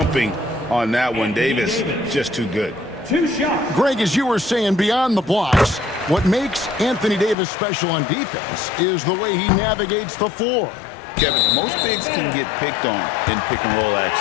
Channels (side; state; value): right; drops out; at 7.4 s